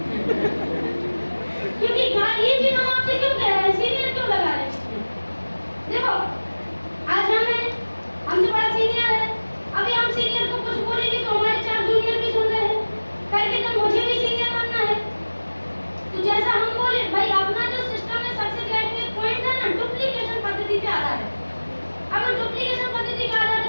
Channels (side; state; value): both; inverted; correlation -1.00